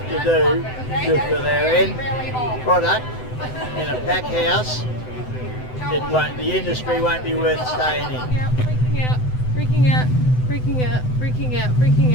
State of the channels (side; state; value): right; late; 7.9 ms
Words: to do for their end product in a pack house, the industry won't be worth staying in. Freaking out, freaking out, freaking out, freaking out, freaking